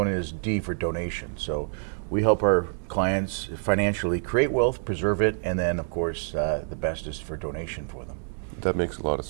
is D for donation. So we help our clients financially create wealth, preserve it, and then, of course, the best is for donation for them. That makes a lot of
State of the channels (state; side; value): silent; left; digital silence